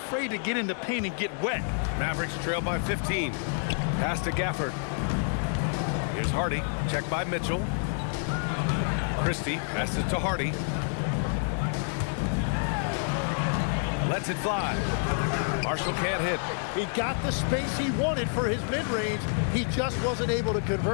to get in the paint and get wet. Mavericks trail by 15. Pass to Gafford. Here's Hardy. Checked by Mitchell. Christie passes to Hardy. Lets it fly. Marshall can't hit. He got the space he wanted for his mid-range. He just wasn't able to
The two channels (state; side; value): silent; right; 59 dB below the other